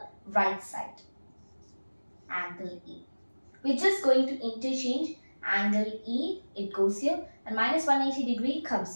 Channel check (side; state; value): both; inverted; correlation -1.00